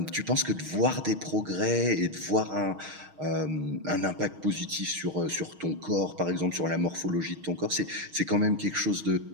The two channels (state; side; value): late; left; 6.4 ms